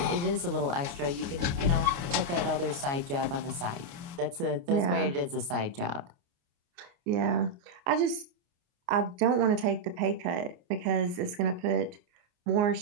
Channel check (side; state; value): left; late; 29 ms